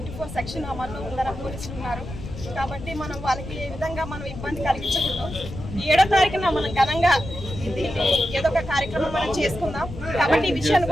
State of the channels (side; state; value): left; noise; rumble, 10 dB below the sound